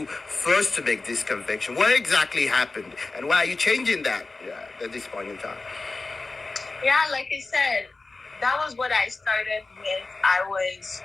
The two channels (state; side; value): quieter; right; 3.6 dB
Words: first to make this confession? What exactly happened? And why are you changing that at this point in time? Yeah, like I said, that was what I started with. I was